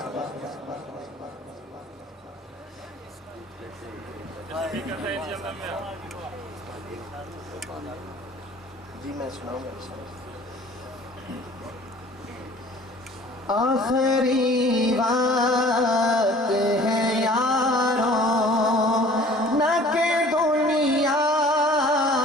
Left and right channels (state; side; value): normal; both; correlation 0.50